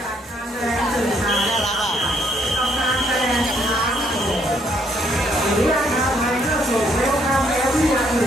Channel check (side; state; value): both; normal; correlation 0.70